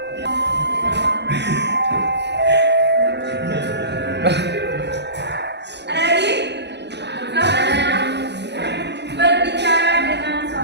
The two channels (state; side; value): late; left; 0.50 ms